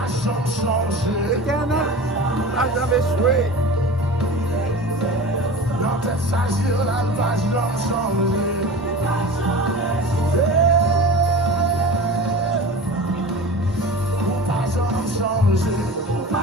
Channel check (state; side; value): normal; both; correlation 0.34